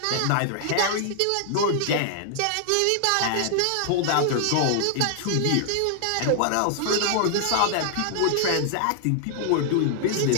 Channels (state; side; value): different; both; correlation 0.00